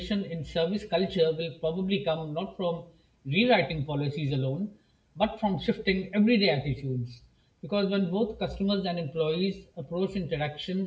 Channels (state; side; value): identical; both; correlation 1.00